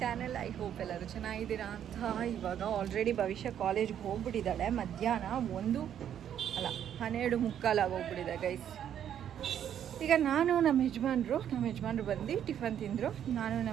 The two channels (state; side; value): quieter; left; 9.7 dB